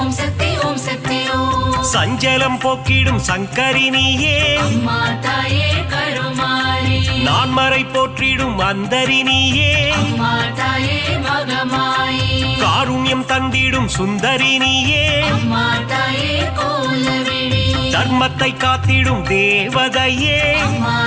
சக்தி ஓம் சக்தி ஓம் சஞ்சலம் போக்கிடும் சங்கரினியே அம்மா தாயே கருமாரி நான்மறை போற்றிடும் அந்தரினியே அம்மா தாயே மகமாயி காருண்யம் தந்திடும் சுந்தரினியே அம்மா தாயே கோலவிழி தர்மத்தை காத்திடும் தேவதையே அம்மா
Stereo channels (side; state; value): both; identical; correlation 1.00